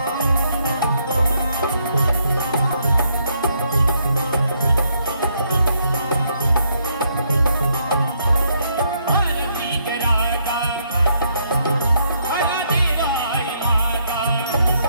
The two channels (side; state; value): both; inverted; correlation -0.73